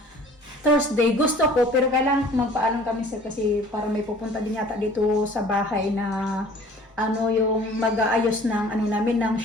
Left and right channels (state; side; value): normal; both; correlation 0.49